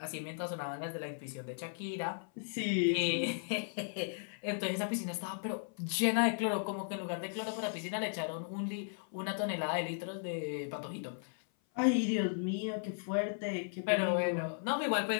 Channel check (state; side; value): silent; right; 54 dB below the other